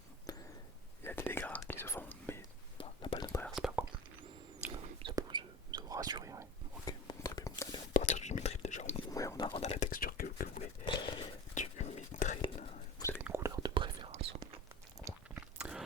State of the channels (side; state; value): both; normal; correlation 0.34